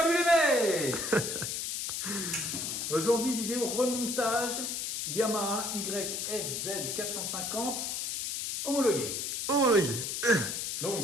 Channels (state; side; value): noise; left; hiss, 3 dB below the sound